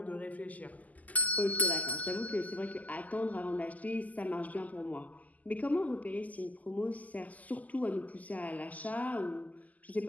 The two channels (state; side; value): late; right; 0.078 ms